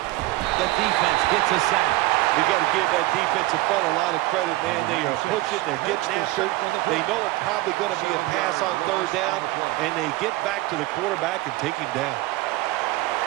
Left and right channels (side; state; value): left; quieter; 18.9 dB